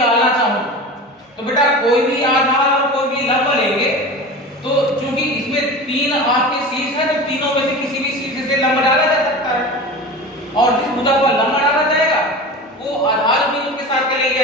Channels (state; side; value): normal; both; correlation 0.32